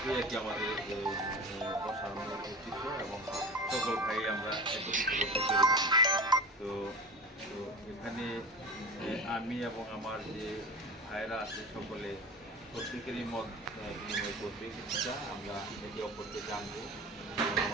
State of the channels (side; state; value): both; normal; correlation 0.32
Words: আর কি আমাদের বসার মূল উদ্দেশ্য এবং সকল ভাই আমরা একত্রিত করতে পেরেছি। তো তো এখানে আমি এবং আমার যে ভাইরা আছে সকলে প্রত্যেকেরই মত বিনিময় করবে, কিছুটা আমরা একে অপরকে জানবো এবং